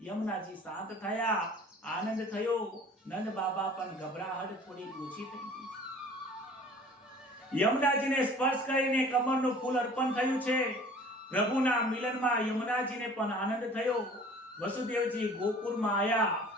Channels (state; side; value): normal; both; correlation 0.48